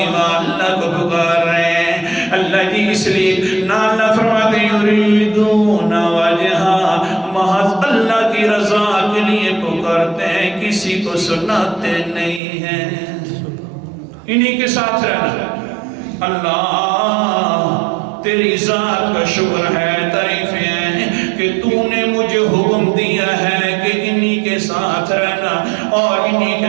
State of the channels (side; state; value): left; drops out; at 12.4 s